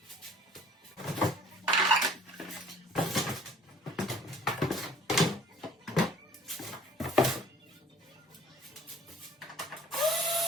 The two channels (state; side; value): normal; both; correlation 0.52